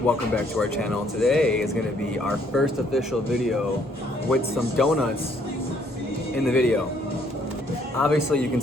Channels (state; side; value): normal; both; correlation 0.66